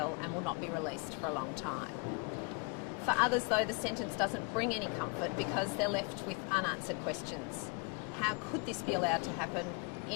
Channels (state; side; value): quieter; right; 32.7 dB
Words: and will not be released for a long time. For others, though, the sentence doesn't bring any comfort because they're left with unanswered questions. How could this be allowed to happen